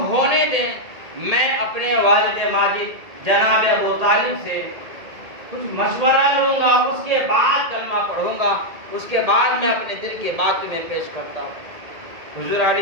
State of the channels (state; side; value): late; left; 1.8 ms